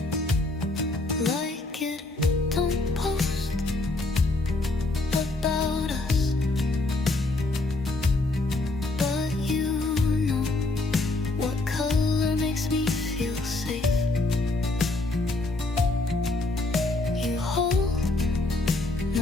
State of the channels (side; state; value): right; quieter; 3.1 dB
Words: Like it, don't post about us, but you know what color makes me feel safe. You hold